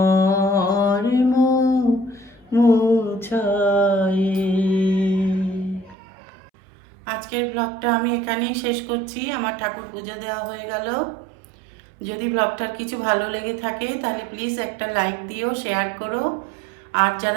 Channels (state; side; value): drops out; left; at 6.0 s